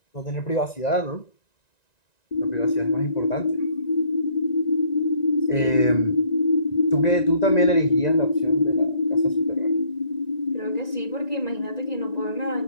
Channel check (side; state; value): right; late; 1.9 ms